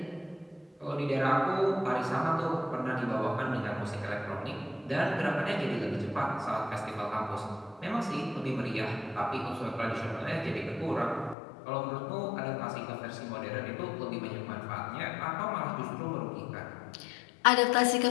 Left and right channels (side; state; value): right; drops out; at 11.4 s